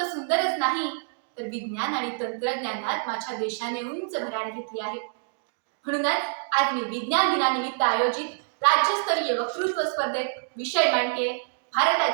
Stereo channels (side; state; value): left; silent; digital silence